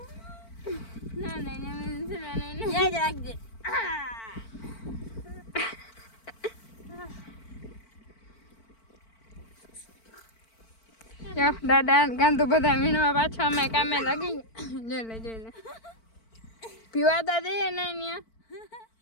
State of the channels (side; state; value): right; late; 4.5 ms